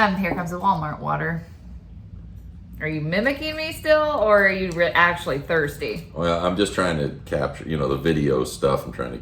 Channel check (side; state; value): both; identical; correlation 1.00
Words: comes the Walmart water. Are you mimicking me still, or are you actually thirsty? Well, I'm just trying to capture, the video stuff. I'm trying to